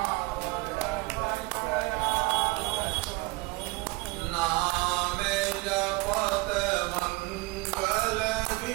नाम जपत मंगल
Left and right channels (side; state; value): left; quieter; 23.2 dB